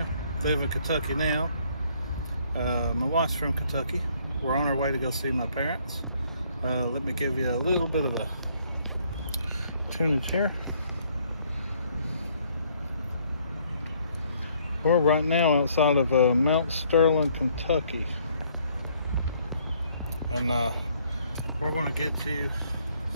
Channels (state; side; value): inverted; both; correlation -0.65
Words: live in Kentucky now. My wife's from Kentucky. We're on our way to go see my parents. Let me give you a little bit of a tunage here. We're right now outside of Mount Sterling, Kentucky. And we're going to get you